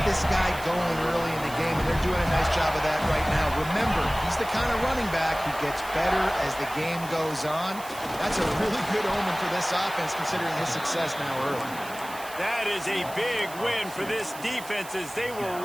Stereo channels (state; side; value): noise; right; hiss, 15 dB below the sound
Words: this guy going early in the game, and they're doing a nice job of that right now. Remember, he's the kind of running back who gets better as the game goes on. That's a really good omen for this offense, considering his success now early. That is a big win for this defense, as they were